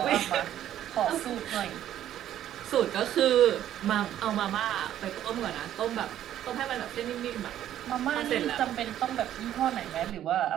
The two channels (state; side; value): quieter; left; 11.6 dB